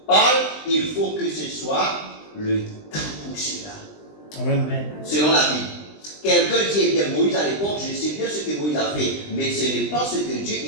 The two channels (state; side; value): late; right; 20 ms